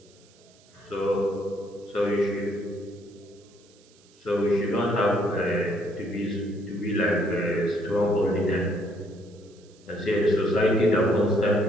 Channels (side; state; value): right; noise; hiss, 29 dB below the sound